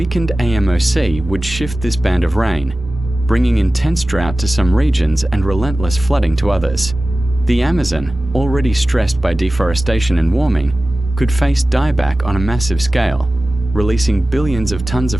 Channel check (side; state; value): both; normal; correlation 0.96